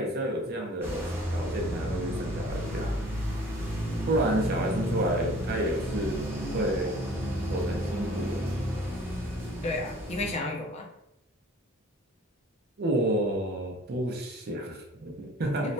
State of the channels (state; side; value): normal; both; correlation 0.50